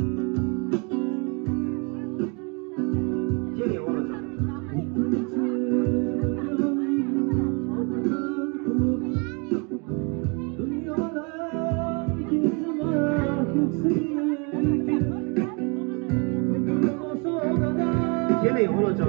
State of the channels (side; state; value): left; quieter; 33.5 dB